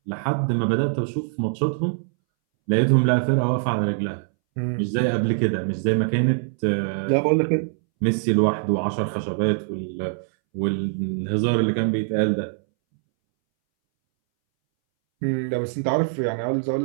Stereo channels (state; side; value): silent; left; 62 dB below the other